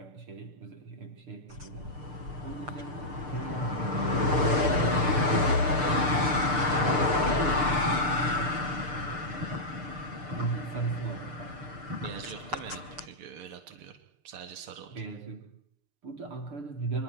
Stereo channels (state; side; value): late; left; 6.7 ms